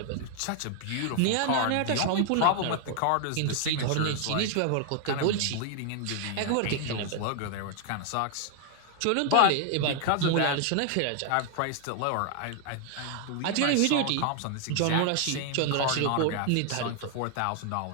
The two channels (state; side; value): different; both; correlation 0.00